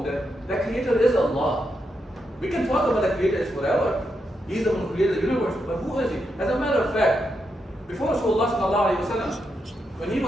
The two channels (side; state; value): both; normal; correlation 0.83